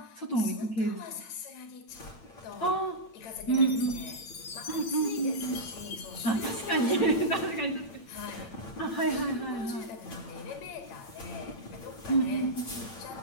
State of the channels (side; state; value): right; late; 8.8 ms